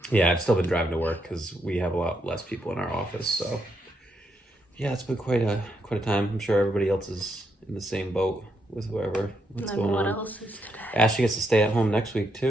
Yeah, I've still been driving to work because we have a lot less people in our office. So, yeah, it's been quite a time. I'm sure everybody else is in the same boat with what's going on. What else is today? Ashley gets to stay at home next week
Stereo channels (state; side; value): normal; both; correlation 0.79